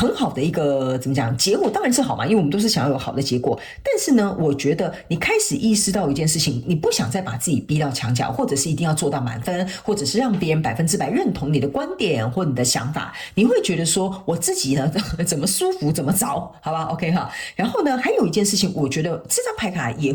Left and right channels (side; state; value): both; identical; correlation 1.00